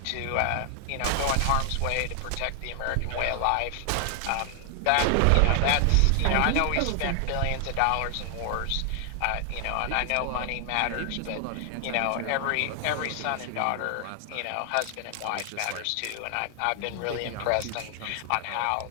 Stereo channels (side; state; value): both; different; correlation 0.00